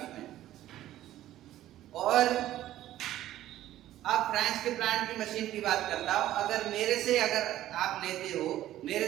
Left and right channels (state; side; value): quieter; left; 13.6 dB